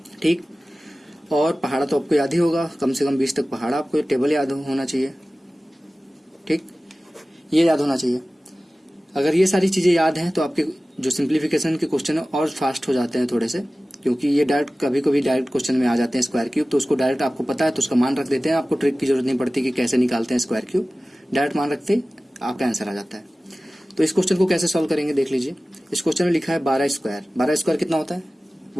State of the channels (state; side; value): normal; both; correlation 0.97